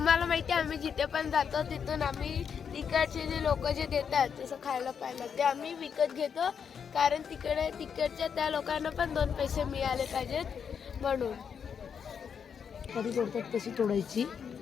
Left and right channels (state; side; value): quieter; right; 7.1 dB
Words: माहिती आहे आम्ही जिथे पण जातो तिथून आम्ही तिकडचे जे लोक जे देतात जसं खायला प्यायला ते आम्ही विकत घेतो, कारण तिकडच्या त्या लोकांना पण 2 पैसे मिळाले पाहिजेत म्हणून. कधी तोडतात तशी तोडायची